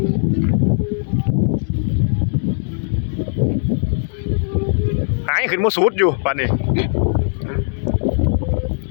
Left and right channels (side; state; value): right; silent; digital silence